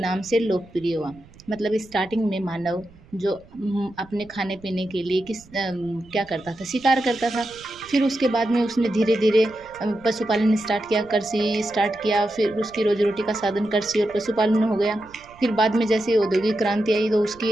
से लोकप्रिय हुआ। मतलब स्टार्टिंग में मानव जो अपने खाने पीने के लिए क्या करता था, शिकार करता था। फिर उसके बाद में उसने धीरे धीरे पशुपालन स्टार्ट किया, कृषि स्टार्ट किया। फिर उसकी रोजी रोटी का साधन कृषि और पशुपालन हो गया। फिर बाद में जैसे औद्योगिक क्रांति आई तो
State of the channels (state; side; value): noise; right; rumble, 25 dB below the sound